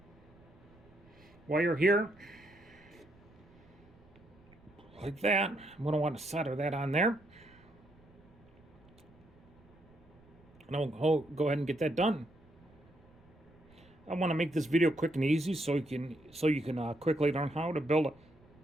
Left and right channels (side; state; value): right; noise; rumble, 27 dB below the sound